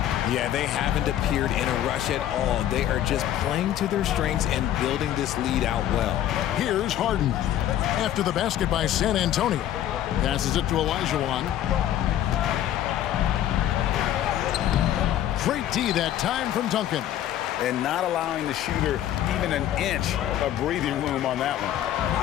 Yeah, they haven't appeared in a rush at all. They are just playing to their strengths and building this lead out well. Here's Harden. After the basket by San Antonio. Passes it to Olajuwon. Great D that time from Duncan. And not allowing the shooter even an inch of breathing room on that one.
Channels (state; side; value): quieter; right; 11.8 dB